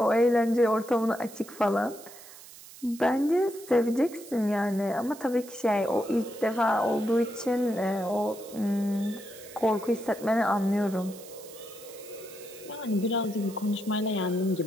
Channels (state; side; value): noise; right; hiss, 18 dB below the sound